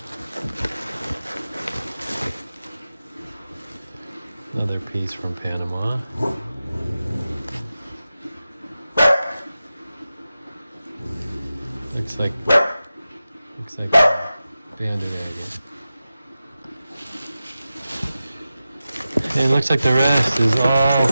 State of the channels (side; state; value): both; inverted; correlation -0.93